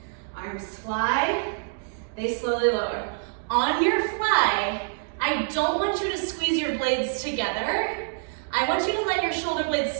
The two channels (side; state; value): left; silent; digital silence